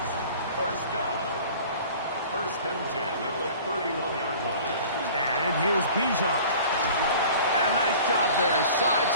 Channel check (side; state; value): both; inverted; correlation -0.45